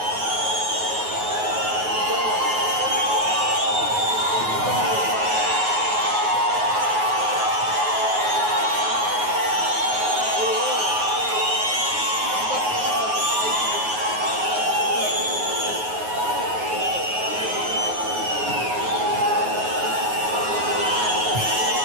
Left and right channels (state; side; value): late; left; 9.4 ms